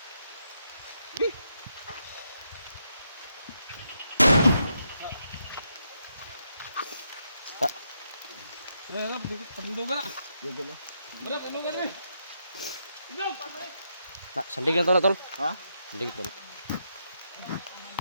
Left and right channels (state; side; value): inverted; both; correlation -0.80